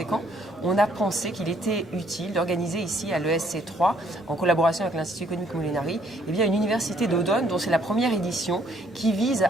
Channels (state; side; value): normal; both; correlation 0.65